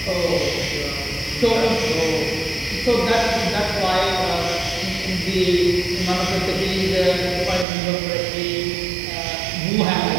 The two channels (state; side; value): drops out; left; at 7.7 s